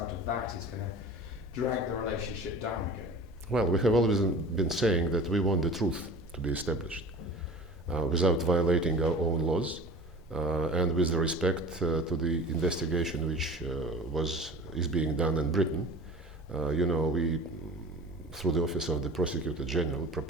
of that is going to drag the relationship down again? Well, we have always been saying that we want the truth to be established without violating our own laws and with the respect to the investigation which is being done in Britain. We, through the Office of the Prosecutor General,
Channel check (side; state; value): both; normal; correlation 0.40